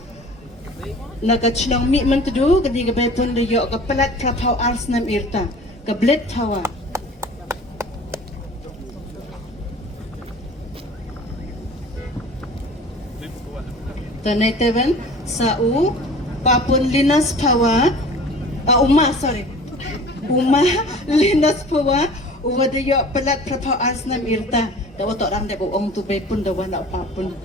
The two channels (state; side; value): normal; both; correlation 0.43